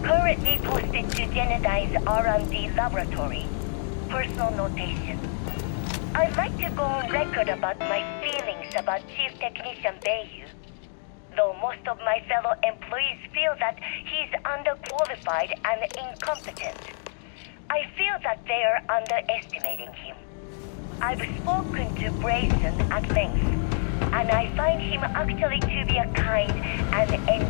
Currently posted to Genodyne's R&D laboratory. Personal notation. I'd like to go on record about my feelings about Chief Technician Beiyu. Though most of my fellow employees feel that he's underqualified and incompetent, I feel that they are underestimating him. I've spoken to Brayson at length, and I find him actually to be a kind and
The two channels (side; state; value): right; silent; 60 dB below the other